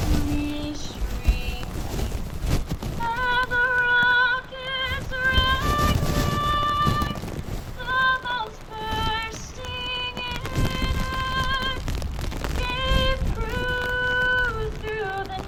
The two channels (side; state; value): both; identical; correlation 1.00